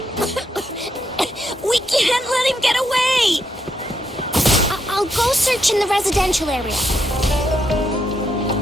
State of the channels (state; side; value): normal; both; correlation 0.79